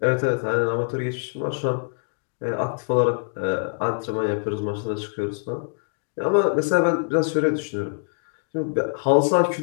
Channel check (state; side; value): silent; right; digital silence